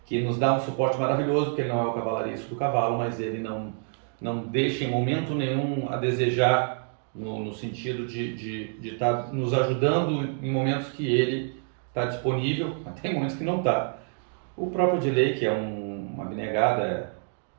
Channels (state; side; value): silent; left; 60 dB below the other